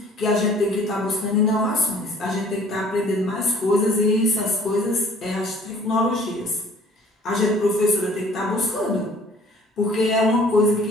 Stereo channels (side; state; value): both; normal; correlation 0.53